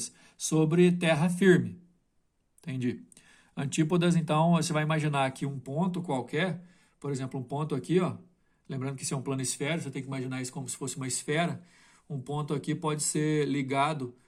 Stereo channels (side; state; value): both; identical; correlation 1.00